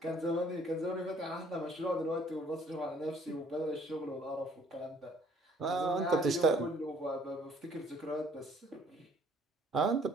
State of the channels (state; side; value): normal; both; correlation 0.60